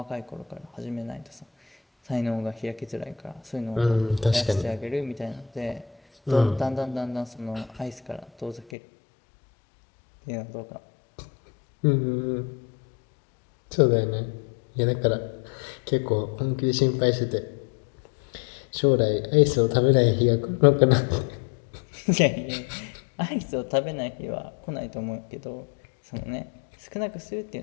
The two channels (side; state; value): right; drops out; at 8.7 s